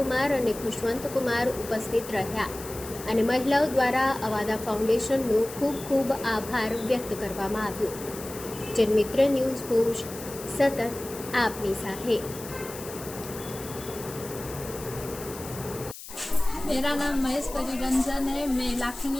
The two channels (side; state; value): left; noise; hiss, 13 dB below the sound